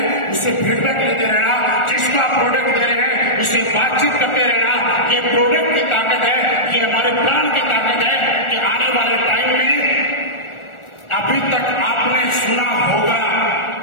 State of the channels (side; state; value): right; late; 1.4 ms